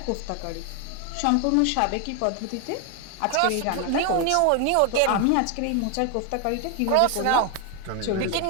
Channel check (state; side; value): different; both; correlation 0.01